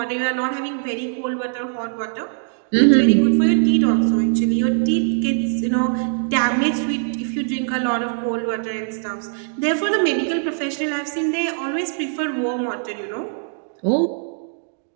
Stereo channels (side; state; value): left; silent; digital silence